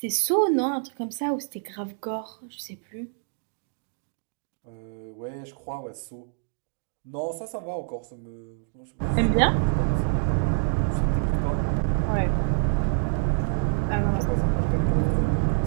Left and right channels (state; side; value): silent; left; digital silence